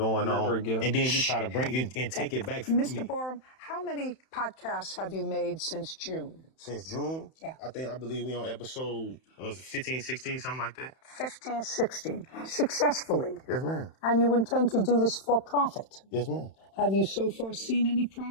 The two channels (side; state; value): right; late; 31 ms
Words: on, and then you try to bring it and take it back from me. Mr. Borum, how many podcasts have you made since June? Since June? Yeah. I believe we on episode 15, 16, something like that. 15, 16. Successfully. Yes, ma'am. And you intend to do this for profit? Yes, ma'am. Have you so far seen any